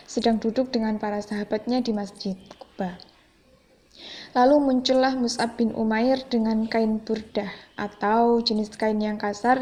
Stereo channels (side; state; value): both; identical; correlation 1.00